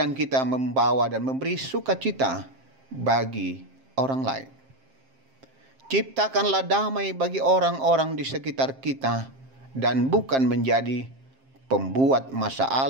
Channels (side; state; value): left; late; 7.5 ms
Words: kita membawa dan memberi sukacita bagi orang lain. Ciptakanlah damai bagi orang-orang di sekitar kita dan bukan menjadi pembuat